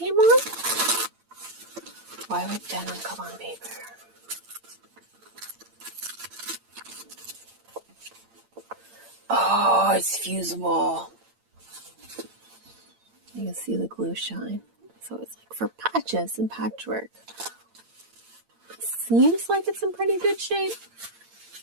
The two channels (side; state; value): left; late; 8.8 ms